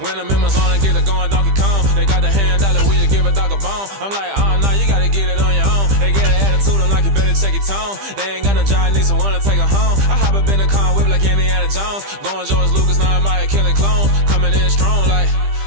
I'm in my zone and get it going Donkey Kong, they got the hand dollar, will you give a dog a bone? I'm like, oh no, you gotta get it on your own. They get an attitude, I'm like, you better check your tone. They ain't got no job, need someone to take her home. I hop up in the car, whip like Indiana Jones. Going George Lucas, now I'm out here killing clones. Coming in strong like,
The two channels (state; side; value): late; left; 15 ms